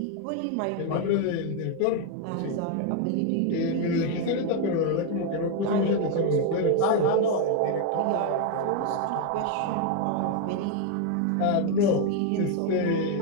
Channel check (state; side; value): different; both; correlation 0.01